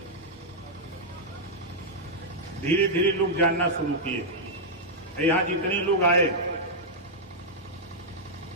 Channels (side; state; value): both; normal; correlation -0.06